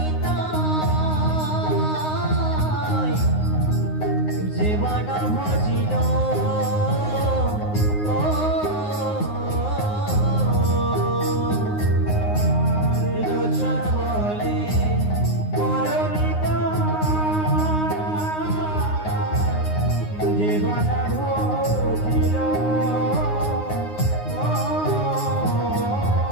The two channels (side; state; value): right; late; 9.6 ms